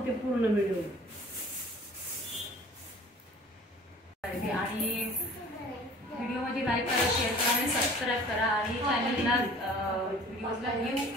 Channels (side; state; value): both; normal; correlation 0.47